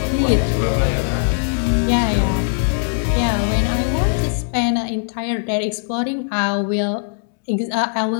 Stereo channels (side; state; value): right; silent; digital silence